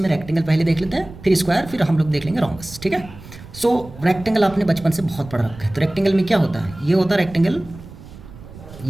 रेक्टेंगल पहले देख लेते हैं, फिर स्क्वायर, फिर हम लोग देख लेंगे रोम्बस, ठीक है। सो रेक्टेंगल आपने बचपन से बहुत पढ़ रखा है। तो रेक्टेंगल में क्या होता है, ये होता है रेक्टेंगल,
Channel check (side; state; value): right; noise; rumble, 17 dB below the sound